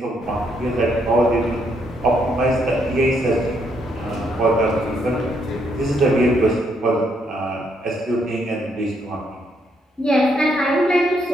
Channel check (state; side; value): normal; both; correlation 0.74